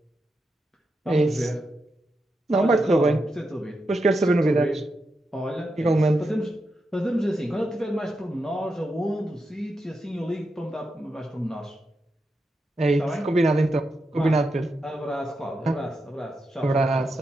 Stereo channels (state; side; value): normal; both; correlation 0.86